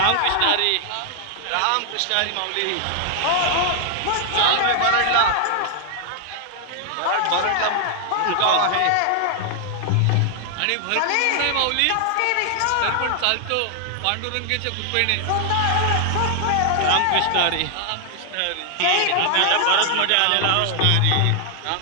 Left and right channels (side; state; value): both; different; correlation 0.00